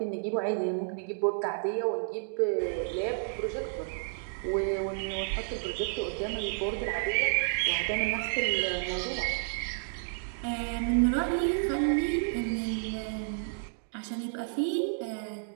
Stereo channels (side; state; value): left; silent; digital silence